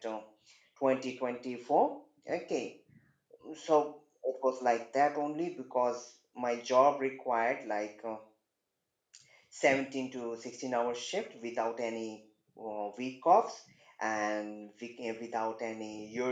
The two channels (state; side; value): identical; both; correlation 1.00